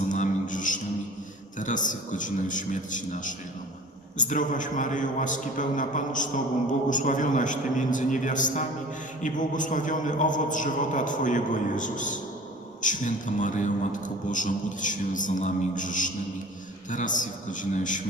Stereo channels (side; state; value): both; normal; correlation 0.40